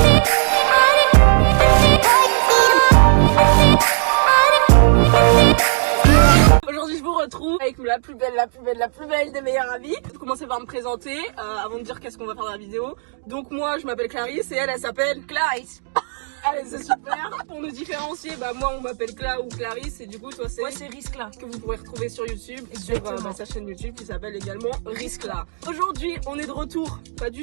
Aujourd'hui je vous retrouve avec la plus belle des meilleures amies. Je vais commencer par me présenter avant de dire qu'est-ce qu'on va faire dans la vidéo. Donc moi je m'appelle Clarisse et elle s'appelle Clarisse. Allez, c'est super. Pour nous différencier, moi on m'appelle Cla ou Clarisse et du coup toi c'est... Moi c'est Riscla. Que vous pourrez retrouver sur YouTube et sur sa chaîne YouTube qui s'appelle également Riscla. Aujourd'hui on est de retour, pas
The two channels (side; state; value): left; silent; digital silence